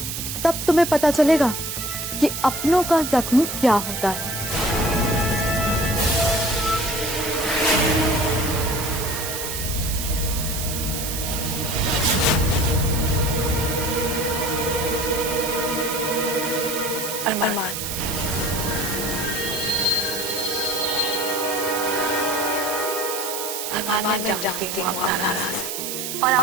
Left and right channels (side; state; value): right; noise; hiss, 4 dB below the sound